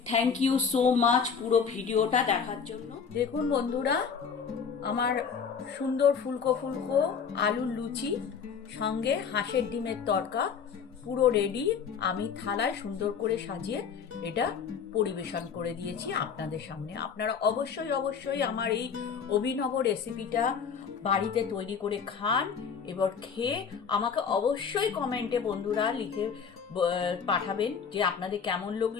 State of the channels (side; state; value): right; quieter; 6.5 dB